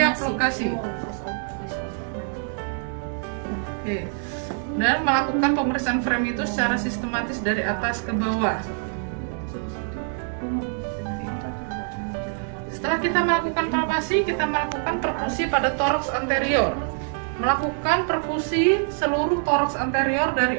lokasi. Oke. Dan melakukan pemeriksaan frame itu secara sistematis dari atas ke bawah. Setelah kita melakukan palpasi, kita melakukan perkusi pada toraks anterior. Melakukan perkusi seluruh toraks anterior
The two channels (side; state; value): left; silent; 60 dB below the other